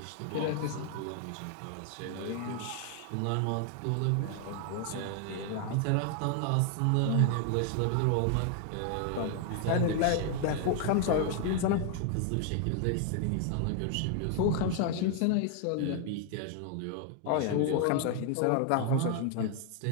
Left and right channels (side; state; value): both; different; correlation 0.00